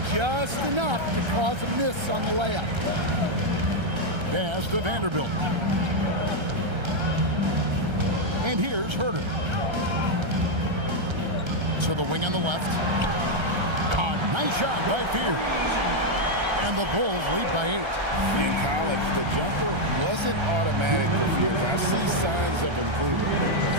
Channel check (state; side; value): late; left; 1.3 ms